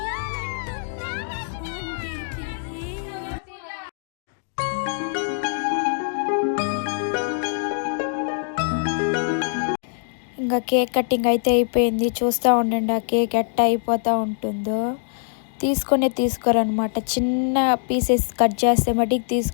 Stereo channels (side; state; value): right; silent; digital silence